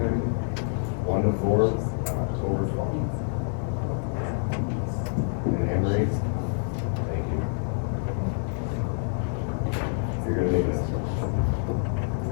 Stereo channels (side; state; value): right; silent; digital silence